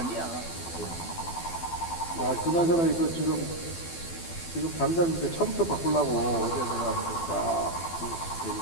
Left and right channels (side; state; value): right; late; 12 ms